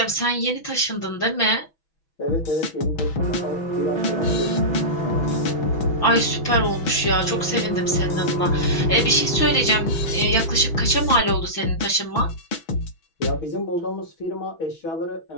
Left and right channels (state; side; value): late; right; 6.2 ms